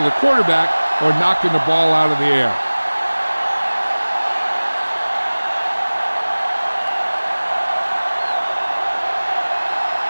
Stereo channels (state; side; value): inverted; both; correlation -1.00